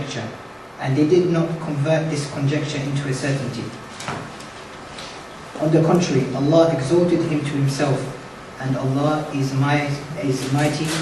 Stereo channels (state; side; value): identical; both; correlation 1.00